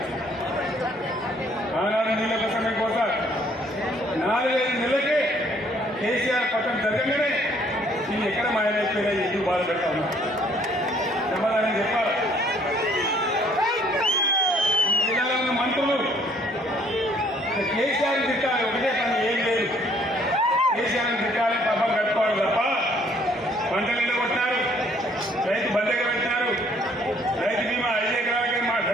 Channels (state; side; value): normal; both; correlation 0.62